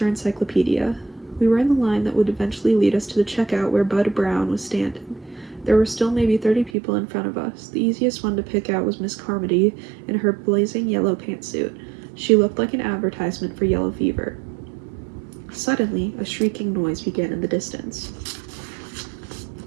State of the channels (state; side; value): drops out; left; at 6.7 s